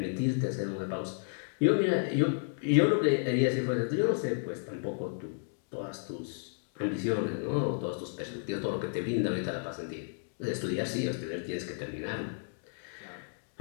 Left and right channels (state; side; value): silent; right; digital silence